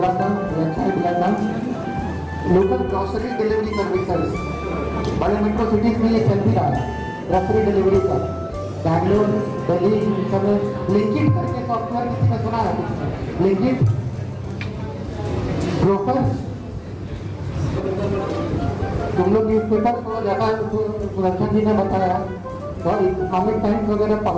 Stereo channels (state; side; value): identical; both; correlation 1.00